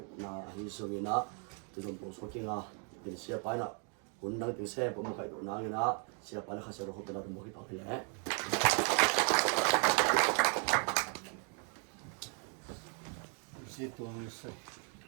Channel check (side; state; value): left; quieter; 40.0 dB